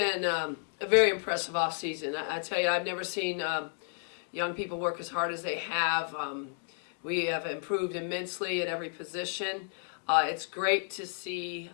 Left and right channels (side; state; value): right; silent; 56 dB below the other